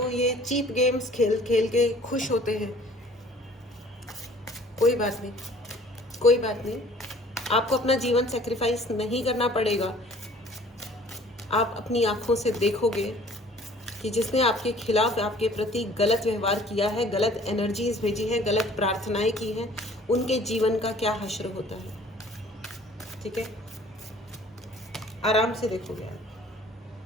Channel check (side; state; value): both; normal; correlation 0.53